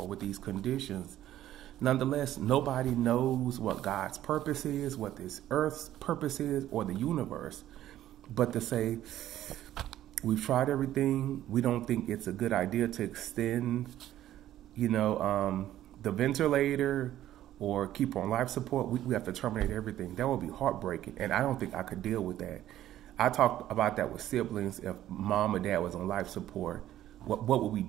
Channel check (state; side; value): quieter; left; 12.9 dB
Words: with these conditions. Nonetheless, nobody knows what God's purpose is, what this earth's purpose is, or the universe. But to say, we've tried everything, we don't think it's a good idea to extend the ventilator or keep on life support, we have to terminate everything. That would be heartbreaking, and I don't think I could deal with that. I talked about that with siblings. If mom or dad was on life support, what would we